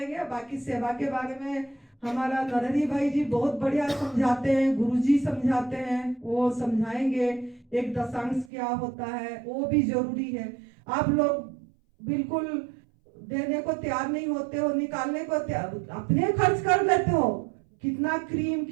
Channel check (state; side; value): drops out; left; at 8.5 s